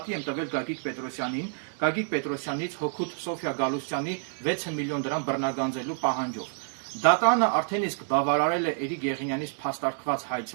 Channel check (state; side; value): silent; left; digital silence